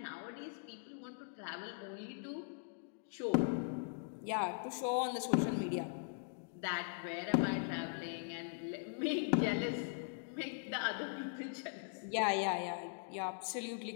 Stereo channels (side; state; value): right; silent; digital silence